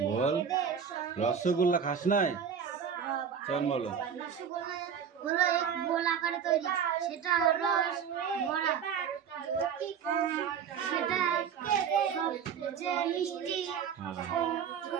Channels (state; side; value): quieter; left; 7.5 dB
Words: বল রসগোল্লা খাস নাই? চল বলো। রসগোল্লা হলো এক গোল আকারে তৈরি, সেটা রস ভরা, সেটা সবচেয়ে মিষ্টি